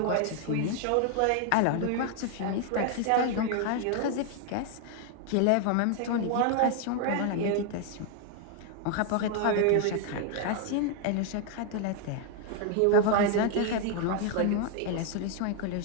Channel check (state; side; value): different; both; correlation 0.00